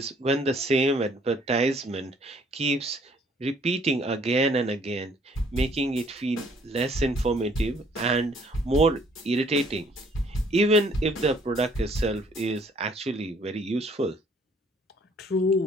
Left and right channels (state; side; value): normal; both; correlation 0.61